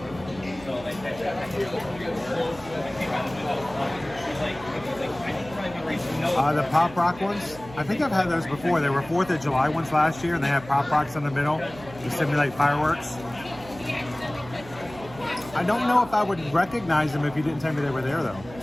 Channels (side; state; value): right; noise; hum, 18 dB below the sound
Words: The Pop Rock ones, I think I've had those before. They were 4th of July ones last year, and they had Pop Rocks in the middle to simulate fireworks. I don't know if I would recognize them if you didn't tell me they were there, though.